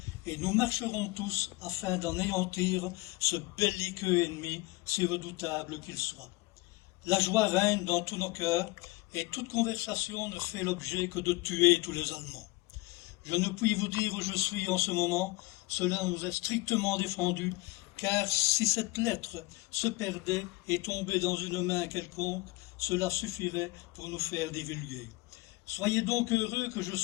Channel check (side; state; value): right; quieter; 22.6 dB